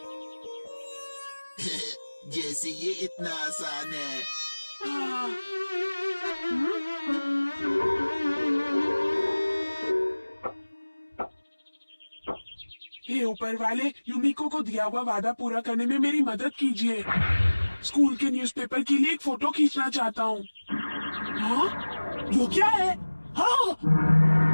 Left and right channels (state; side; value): inverted; both; correlation -1.00